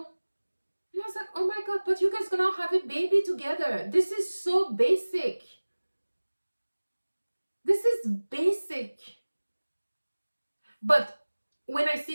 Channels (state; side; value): inverted; both; correlation -1.00